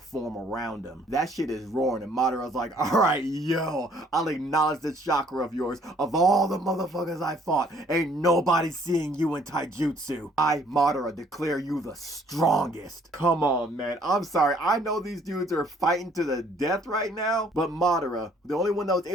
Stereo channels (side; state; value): both; normal; correlation 0.61